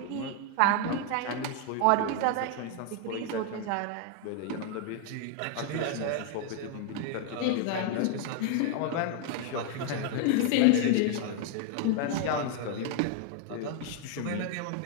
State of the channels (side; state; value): both; different; correlation 0.00